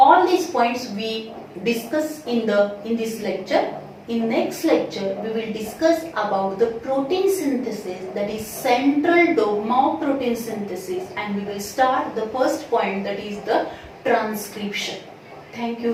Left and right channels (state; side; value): identical; both; correlation 1.00